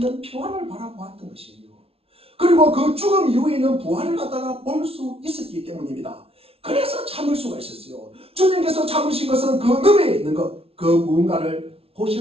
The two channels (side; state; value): left; late; 0.28 ms